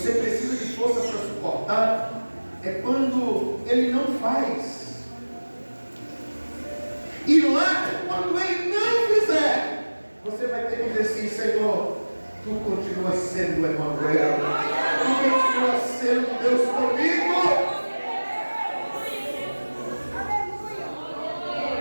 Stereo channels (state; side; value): inverted; both; correlation -1.00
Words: precisa de força para suportar é quando Ele não faz. E lá, quando Ele não fizer, você vai ter que dizer assim: Senhor, Tu continuas sendo o Emanuel. e continua sendo Deus comigo.